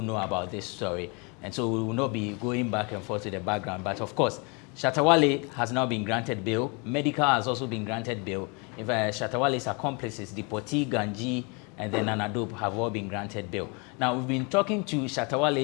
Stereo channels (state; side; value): quieter; right; 31.5 dB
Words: know about this story. And so we will not be going back and forth to the background. But of course, Shatta Wale has now been granted bail. Medikal has also been granted bail. If Shatta Wale's accomplices, Dipoti, Ganji, and then Nana Dope have all been granted bail. Now, we've been talking to Shatta